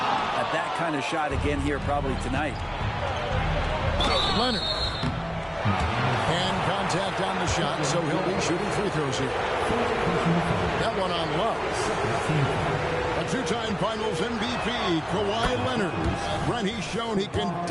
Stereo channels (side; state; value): both; identical; correlation 1.00